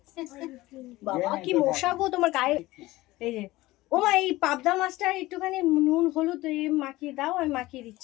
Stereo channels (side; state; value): right; quieter; 18.5 dB